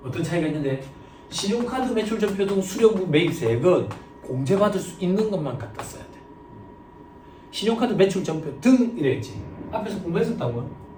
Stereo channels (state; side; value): identical; both; correlation 1.00